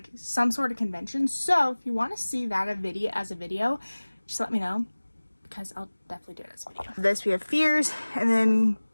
some sort of convention. So if you want to see that as a video, just let me know, because I'll definitely do it as a video. This, we have Fears, and then,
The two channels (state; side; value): inverted; both; correlation -1.00